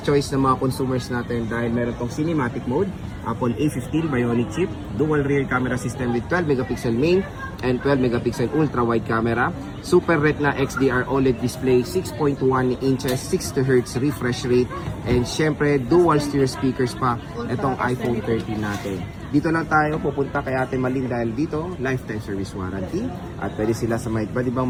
choice ng mga consumers natin dahil meron tong cinematic mode, Apple A15 Bionic chip, dual rear camera system with 12 megapixel main and 12 megapixel ultra wide camera, Super Retina XDR OLED display, 6.1 inches, 60 Hz refresh rate, and syempre dual stereo speakers pa itong iPhone 13 natin. Dito lang tayo pupunta kay Ate Malin dahil dito lifetime service warranty at pwede sila sa mga iba't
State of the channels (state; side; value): identical; both; correlation 1.00